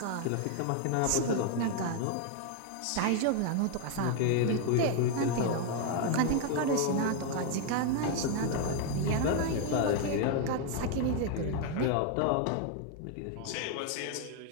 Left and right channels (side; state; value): both; different; correlation 0.01